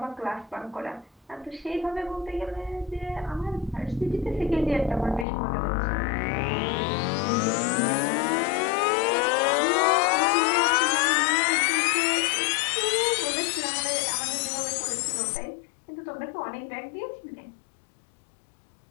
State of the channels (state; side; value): drops out; right; at 5.2 s